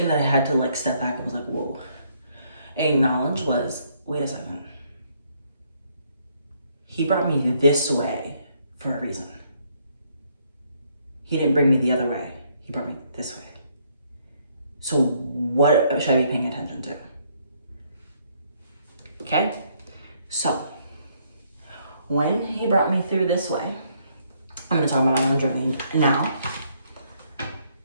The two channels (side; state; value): both; inverted; correlation -0.69